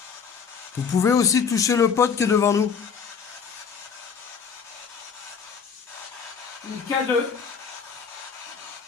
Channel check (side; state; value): right; quieter; 6.4 dB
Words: Vous pouvez aussi toucher le pote qui est devant nous. Le K2.